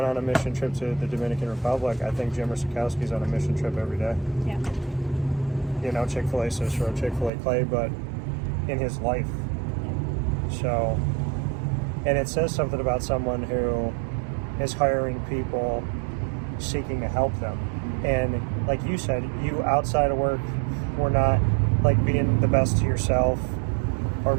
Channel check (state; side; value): drops out; left; at 7.3 s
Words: on a mission trip to the Dominican Republic. I think Jimmer Sikowski's on a mission trip every day. Yeah. Chick-fil-A Cicero Chick-fil-A Clay, but in his life. So, and it says something about someone who is hiring people seeking to help them. And like you said, you outside of work were not like being the best to yourself or